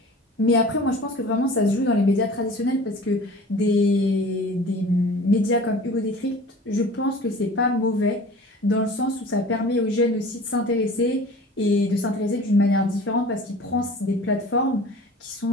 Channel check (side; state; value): both; normal; correlation 0.42